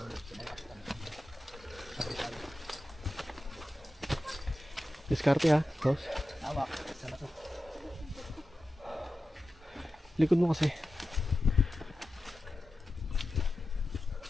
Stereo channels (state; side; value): normal; both; correlation 0.93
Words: Diskarte ha, boss. Hawak. Sana to. Likod mo kasi.